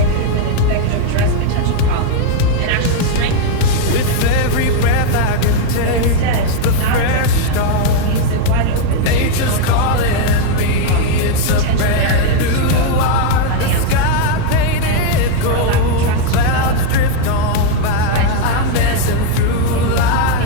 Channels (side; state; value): both; different; correlation 0.01